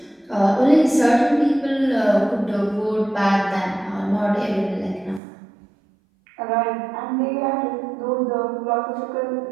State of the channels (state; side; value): drops out; left; at 5.2 s